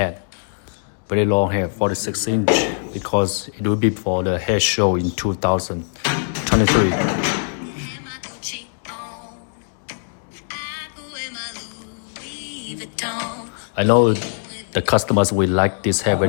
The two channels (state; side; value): silent; right; digital silence